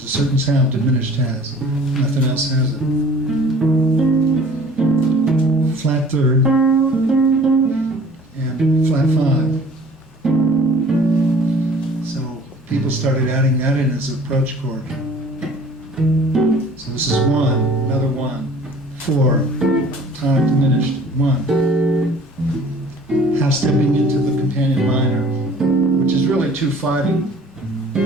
a certain sound diminished has. Nothing else has it. Flat 3rd and flat 5. So people started adding that in as an approach chord. So this is 1, another 1, 4, tonic diminished, 1. Half stepping into the companion minor, which is really 2/5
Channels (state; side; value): normal; both; correlation 0.49